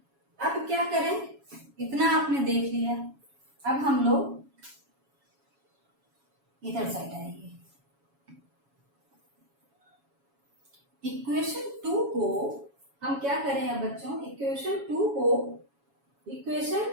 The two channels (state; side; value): late; left; 7.2 ms